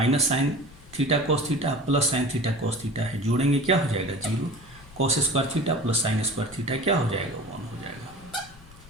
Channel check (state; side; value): noise; left; rumble, 21 dB below the sound